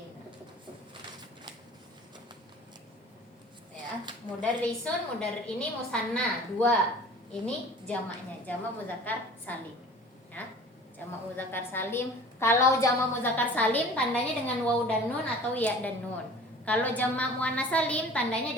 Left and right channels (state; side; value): normal; both; correlation 0.45